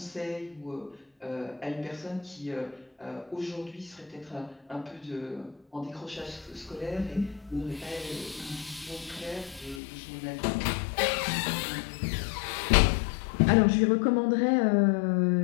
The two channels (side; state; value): right; drops out; at 9.8 s